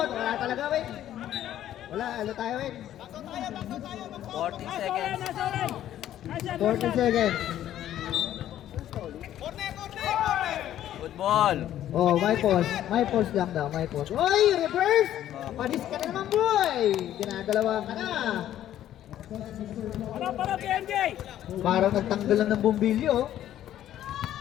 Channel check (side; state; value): right; quieter; 12.0 dB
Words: Wala talaga, Win. Wala, ano tayo, Win? 14 seconds. 14 seconds. Good ball. Oh, my pause. My pause lang daw, my pause. Oy, reverse! Panis ka na naman, boy! Ginagalawa ka na. Para PNJ! Parang nagtanggal lang ng bumbilyo.